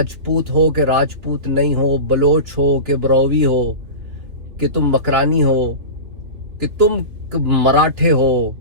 ہو کہ راجپوت نہیں ہو، بلوچ ہو کہ بروی ہو، کہ تم مکرانی ہو، کہ تم مراٹھے ہو،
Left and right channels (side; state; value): left; late; 3.2 ms